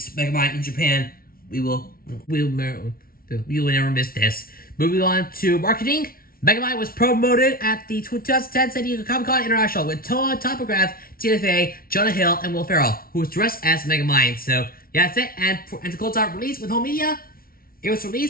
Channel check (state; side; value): late; right; 0.43 ms